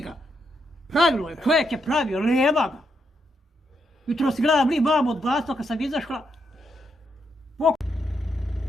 Pravilo je, čovjek je pravio, nema ga. Jutro si gledam li mamu od blatva kad sam izašla.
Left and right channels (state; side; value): normal; both; correlation 0.80